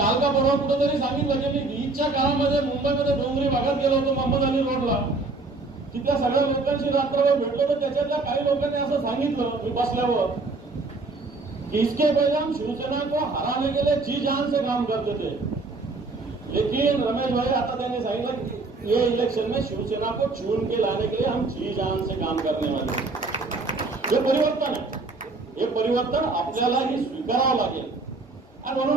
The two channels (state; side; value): quieter; left; 3.5 dB